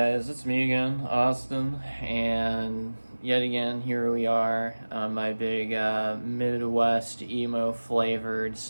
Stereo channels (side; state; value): both; inverted; correlation -1.00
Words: it's me again, Austin, and yet again, here we are on my big Midwest emo flavored